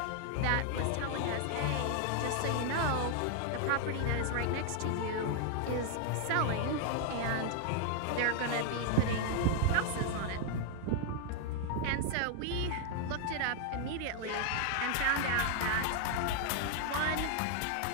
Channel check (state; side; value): different; both; correlation 0.00